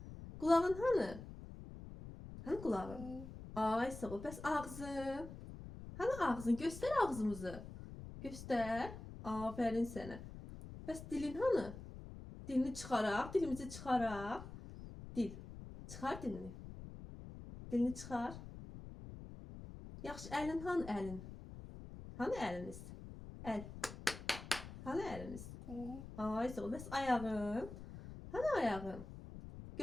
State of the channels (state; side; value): noise; left; rumble, 12 dB below the sound